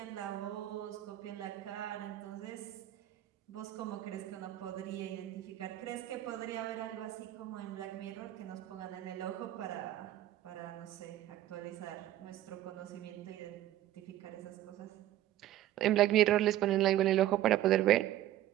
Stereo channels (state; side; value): quieter; left; 13.5 dB